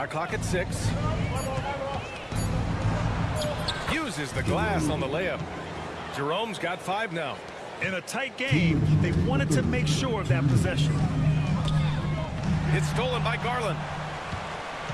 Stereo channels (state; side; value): identical; both; correlation 1.00